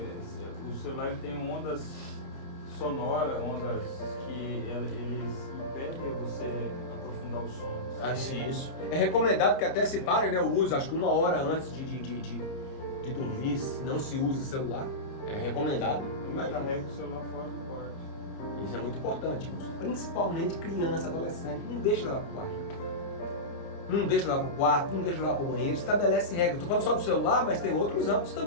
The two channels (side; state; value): right; late; 30 ms